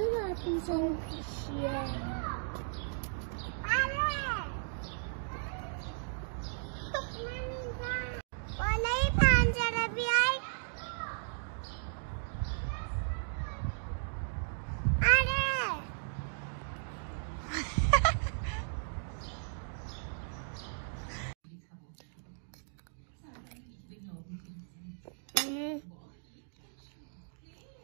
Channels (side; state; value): left; silent; digital silence